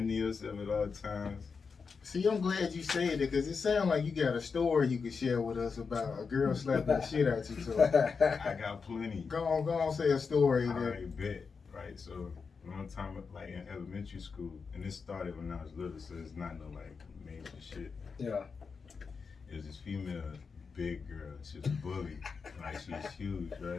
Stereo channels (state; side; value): quieter; right; 5.3 dB